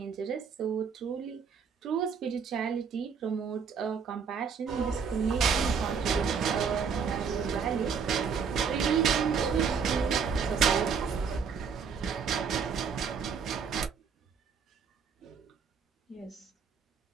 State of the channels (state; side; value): quieter; left; 6.2 dB